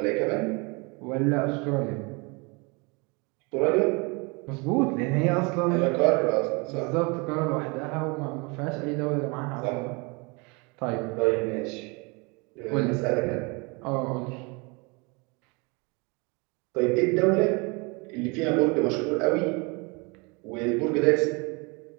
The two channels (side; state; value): left; quieter; 29.3 dB